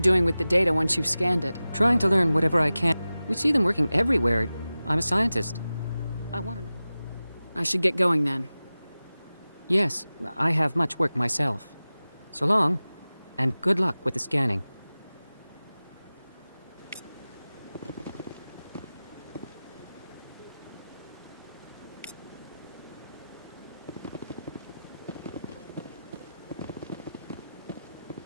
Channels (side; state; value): both; inverted; correlation -0.96